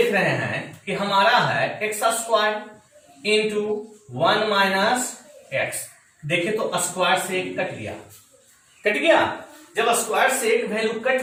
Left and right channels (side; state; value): both; identical; correlation 1.00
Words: रहे हैं कि हमारा है x² इंटू 1 माइनस x, देखिए तो स्क्वायर से एक कट गया, कट गया, जब स्क्वायर से एक वैल्यू कट